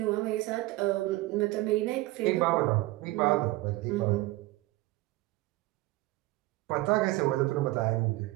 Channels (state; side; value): quieter; left; 19.4 dB